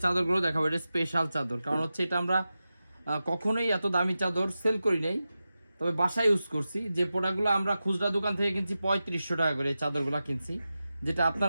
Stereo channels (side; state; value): both; inverted; correlation -0.93